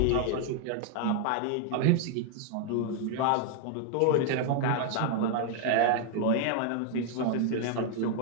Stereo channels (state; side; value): different; both; correlation 0.00